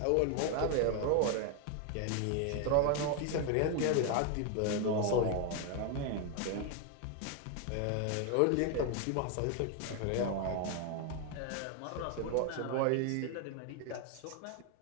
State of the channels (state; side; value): different; both; correlation 0.01